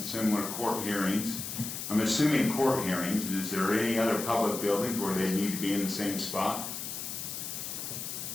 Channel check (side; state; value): left; noise; hiss, 6 dB below the sound